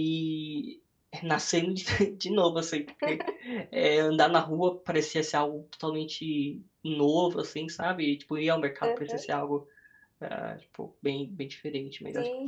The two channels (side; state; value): both; identical; correlation 1.00